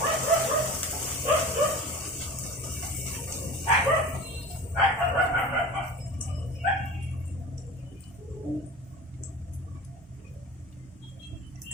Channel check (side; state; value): both; normal; correlation 0.35